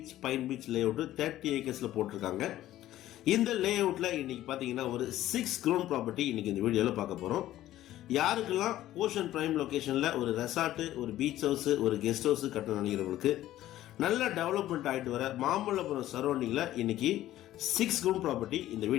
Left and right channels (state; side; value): quieter; right; 14.0 dB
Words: பைன் பீச் லே அவுட்டு 30 ஏக்கர்ஸில் போட்டிருக்காங்க. இந்த லே அவுட்டில் இன்றைக்கி பார்த்தீங்கன்னா ஒரு 6 crore ப்ராப்பர்ட்டி இன்றைக்கி இந்த வீடியோவில் பார்க்க போகிறோம். யாருக்கெல்லாம் ஓஷன் பிரைம் லொக்கேஷனில் ஒரு ரெசார்ட்டு, ஒரு பீச் ஹவுஸு, ஒரு கெஸ்ட் ஹவுஸு கட்டணும் நினைக்கிறவங்களுக்கு, நல்ல டெவலப்மெண்ட் ஆகிட்டு வர மாமல்லபுரம் சரௌண்டிங்கில் இன்றைக்கி 6 crore ப்ராப்பர்ட்டி இந்த